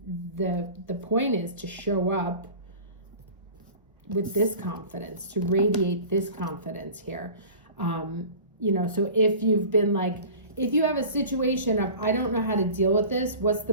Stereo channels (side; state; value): both; inverted; correlation -0.40